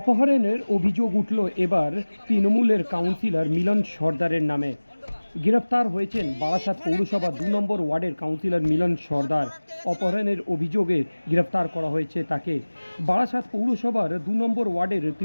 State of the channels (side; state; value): both; inverted; correlation -1.00